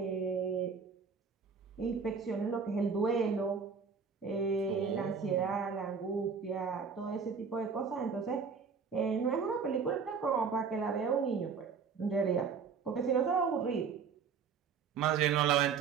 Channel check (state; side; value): quieter; left; 5.8 dB